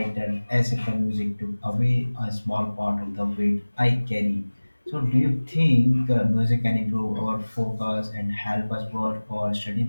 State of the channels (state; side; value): inverted; both; correlation -1.00